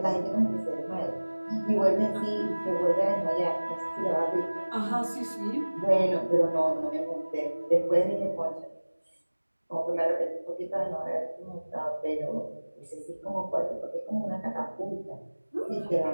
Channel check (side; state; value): both; inverted; correlation -1.00